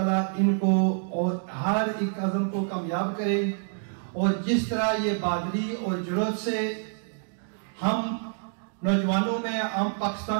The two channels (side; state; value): left; silent; digital silence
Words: ان کو اور ہر ایک عزم کو کامیاب کرے. اور جس طرح یہ بہادری اور جرأت سے ہم نوجوانوں میں، عام